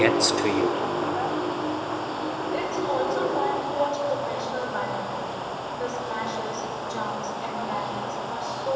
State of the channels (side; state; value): both; identical; correlation 1.00